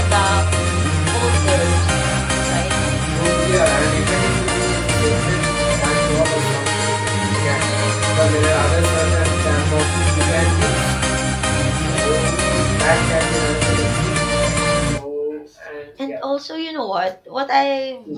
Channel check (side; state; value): both; identical; correlation 1.00